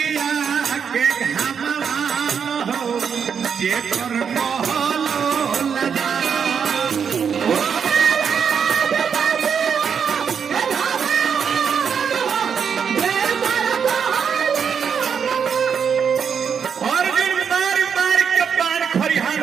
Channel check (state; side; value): quieter; left; 6.9 dB